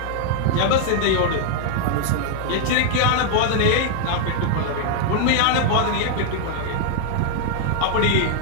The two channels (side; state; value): both; different; correlation 0.00